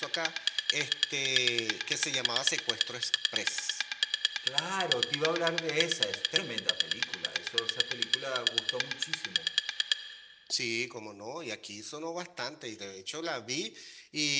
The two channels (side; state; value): both; identical; correlation 1.00